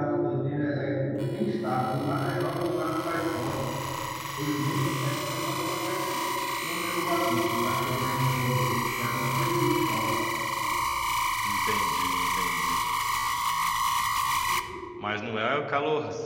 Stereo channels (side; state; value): both; identical; correlation 1.00